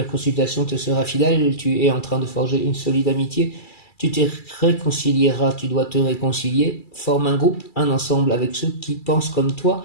consultation te sera fidèle, tu es en train de forger une solide amitié, tu te réconcilieras, tu dois te réconcilier, forme un groupe, un ensemble avec ceux qui pensent comme toi,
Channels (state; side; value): late; right; 2.3 ms